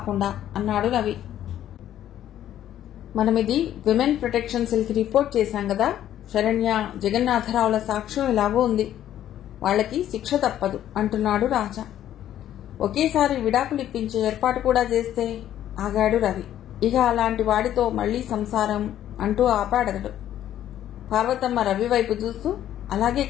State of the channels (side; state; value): right; quieter; 11.6 dB